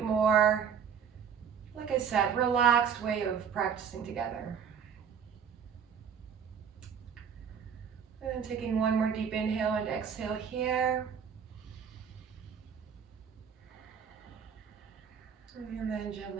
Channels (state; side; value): quieter; left; 7.4 dB